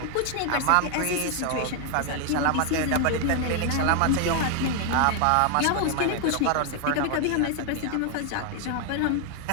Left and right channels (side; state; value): both; different; correlation 0.01